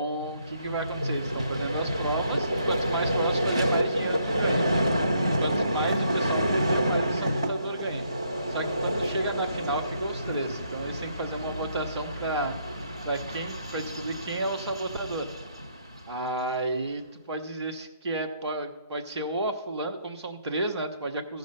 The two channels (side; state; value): both; inverted; correlation -0.71